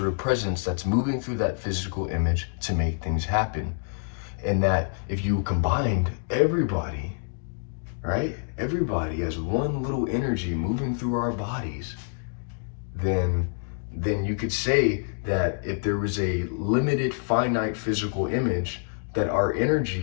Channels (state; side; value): silent; right; digital silence